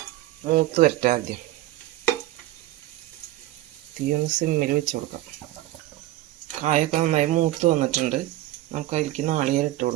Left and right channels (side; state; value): left; quieter; 15.5 dB